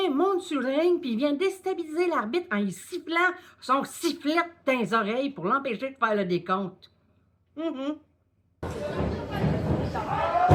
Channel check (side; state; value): both; identical; correlation 1.00